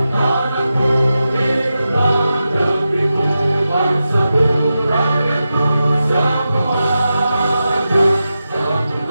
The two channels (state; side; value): inverted; both; correlation -0.91